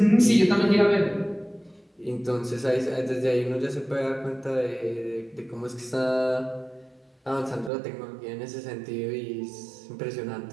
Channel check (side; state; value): left; drops out; at 7.7 s